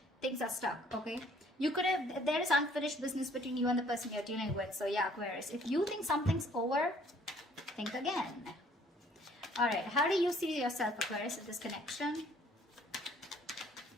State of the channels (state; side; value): normal; both; correlation 0.59